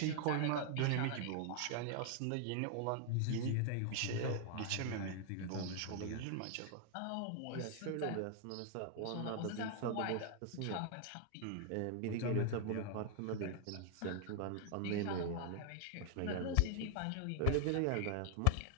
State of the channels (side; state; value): both; different; correlation 0.00